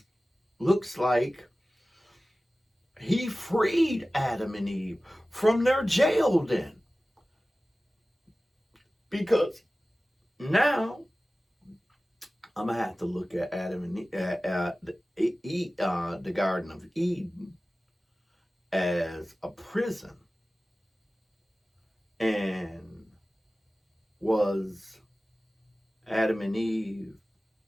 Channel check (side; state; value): both; normal; correlation 0.96